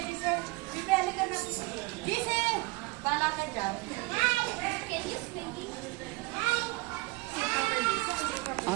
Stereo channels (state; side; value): quieter; left; 23.9 dB